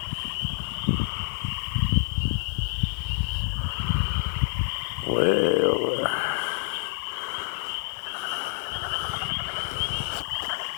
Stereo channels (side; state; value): right; silent; 60 dB below the other